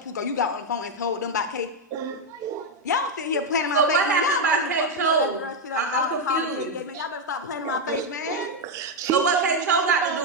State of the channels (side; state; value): both; normal; correlation 0.03